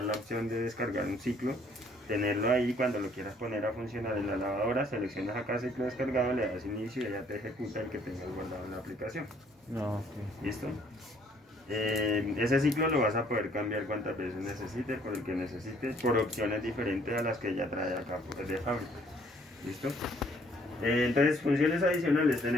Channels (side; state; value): both; normal; correlation 0.62